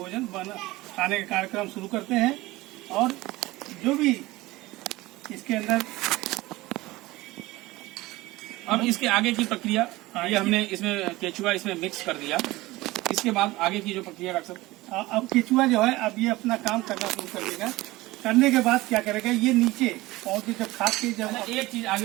खाने का कार्यक्रम शुरू करते हैं। और जो भी इसके अंदर अब इसके आगे की प्रक्रिया, ये हमने इसमें केचुआ इसमें मिक्स कर दिया, इसके बाद आगे की जो प्रक्रिया डॉक्टर साहब? अब केचुआ जो है अब ये अपना काम करना शुरू कर देगा। करने के बाद क्या करेगा, ये नीचे पहुंच के जब खा के जब अच्छा, एक चीज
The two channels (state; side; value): quieter; left; 19.4 dB